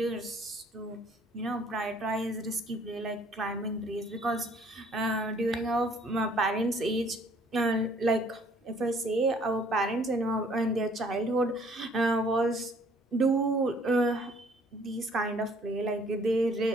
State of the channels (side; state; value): both; normal; correlation 0.60